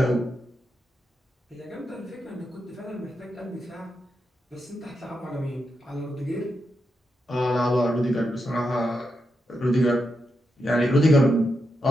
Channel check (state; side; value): normal; both; correlation 0.85